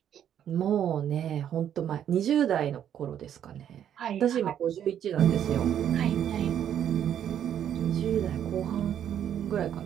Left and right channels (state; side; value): quieter; left; 9.7 dB